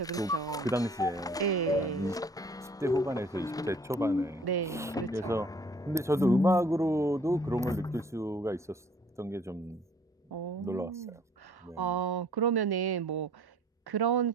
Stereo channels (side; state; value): both; normal; correlation 0.56